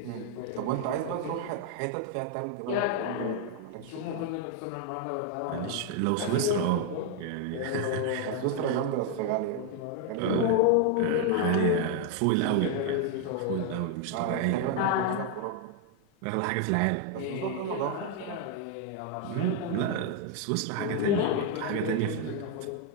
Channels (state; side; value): different; both; correlation 0.00